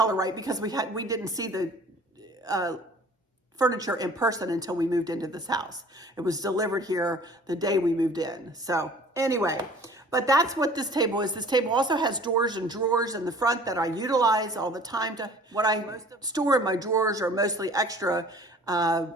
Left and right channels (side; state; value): both; normal; correlation 0.49